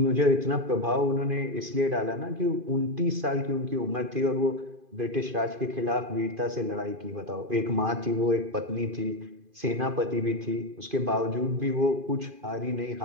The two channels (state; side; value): late; left; 2.5 ms